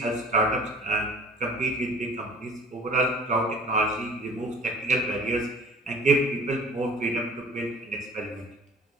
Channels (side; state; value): both; normal; correlation 0.46